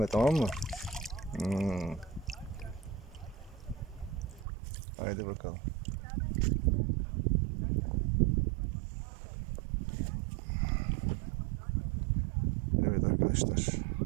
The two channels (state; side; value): drops out; left; at 4.5 s